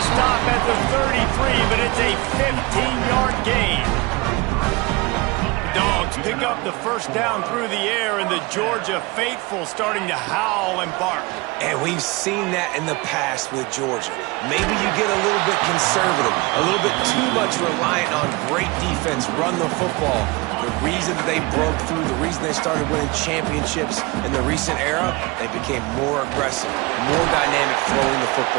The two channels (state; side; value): quieter; left; 24.4 dB